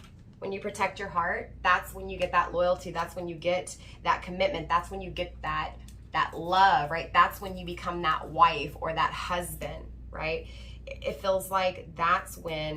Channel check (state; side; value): identical; both; correlation 1.00